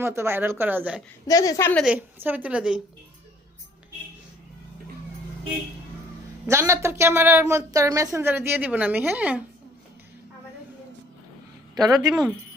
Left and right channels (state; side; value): normal; both; correlation 0.59